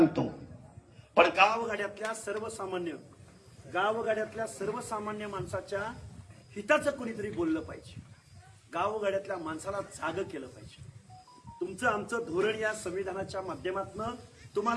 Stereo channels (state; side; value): identical; both; correlation 1.00